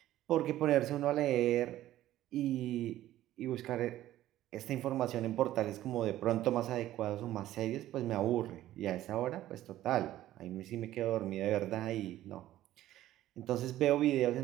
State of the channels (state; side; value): quieter; left; 13.9 dB